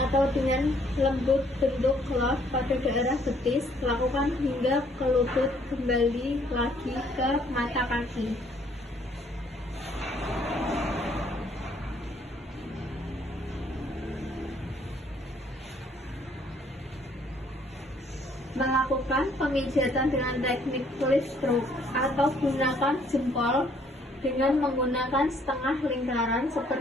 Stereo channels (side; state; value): both; normal; correlation 0.64